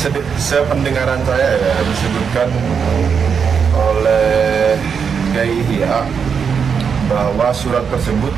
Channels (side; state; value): left; quieter; 6.5 dB